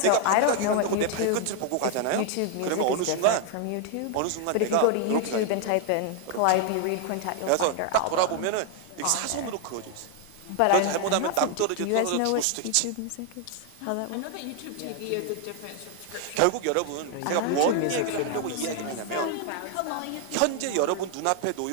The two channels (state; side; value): different; both; correlation 0.00